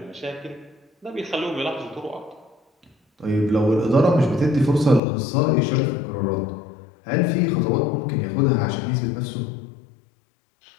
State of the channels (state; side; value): drops out; right; at 5.0 s